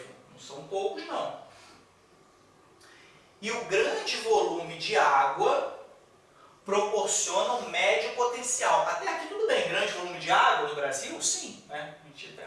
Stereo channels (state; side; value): identical; both; correlation 1.00